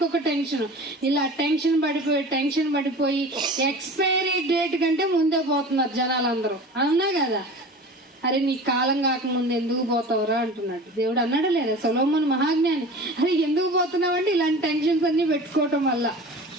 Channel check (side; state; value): both; normal; correlation 0.38